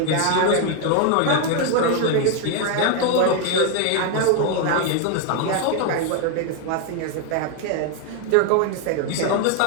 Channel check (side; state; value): both; different; correlation 0.01